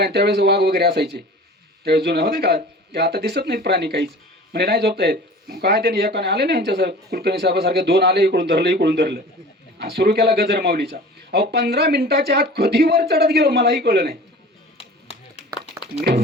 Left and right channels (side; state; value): both; normal; correlation 0.41